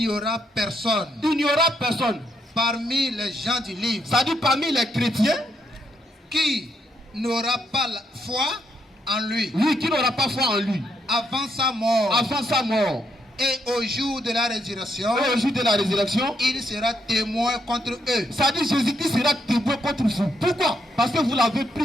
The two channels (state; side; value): normal; both; correlation 0.77